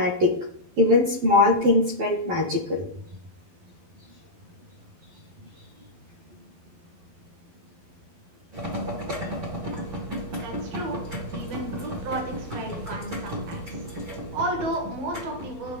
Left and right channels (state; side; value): late; left; 11 ms